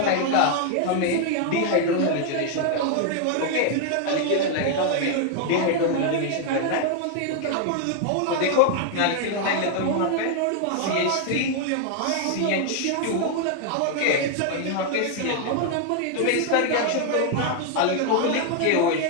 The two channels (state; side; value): different; both; correlation 0.00